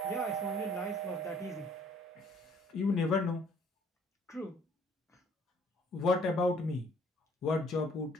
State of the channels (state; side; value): normal; both; correlation 0.59